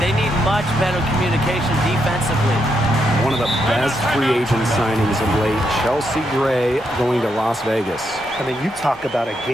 need much better communication defensively. One of the best free agent signings of late, Chelsea Gray going to Las Vegas. I mean, you talk about a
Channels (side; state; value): both; normal; correlation 0.80